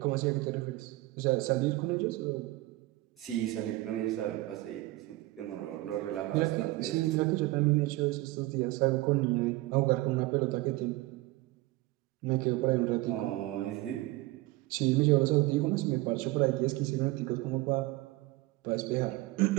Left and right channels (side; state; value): left; quieter; 19.3 dB